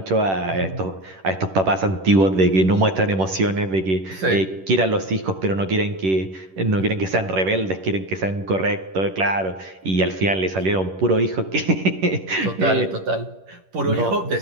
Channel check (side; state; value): left; late; 11 ms